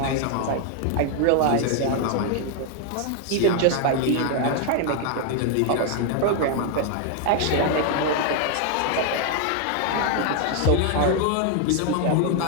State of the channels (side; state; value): both; different; correlation 0.00